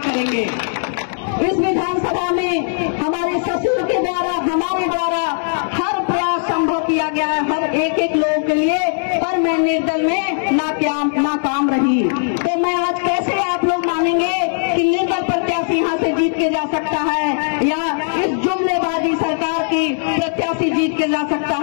इस विधानसभा में हमारे ससुर के द्वारा, हमारे द्वारा हर प्रयास संभव किया गया है हर एक लोगों के लिए, पर मैं निर्दल में नाकाम रही। तो मैं आज कैसे आप लोग मानेंगे कि निर्दल प्रत्याशी यहाँ से जीत के जा सकता है या इस जुमलेबाजी सरकार की प्रत्याशी जीत के जा सकता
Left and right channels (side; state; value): right; silent; digital silence